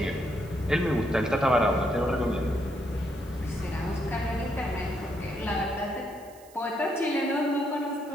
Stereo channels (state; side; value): noise; right; hiss, 24 dB below the sound